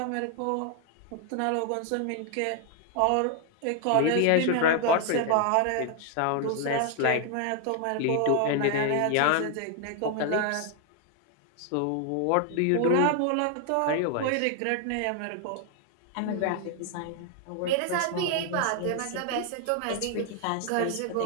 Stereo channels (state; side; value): different; both; correlation 0.00